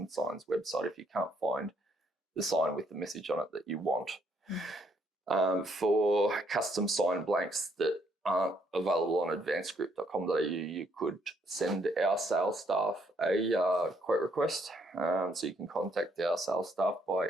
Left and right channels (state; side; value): normal; both; correlation 0.71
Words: signs website if you can't find the sign with the message on it that you want. For custom sign blanks that aren't available on advancedgroup.com.au, you could send our sales staff a quote request. So you can contact our sales staff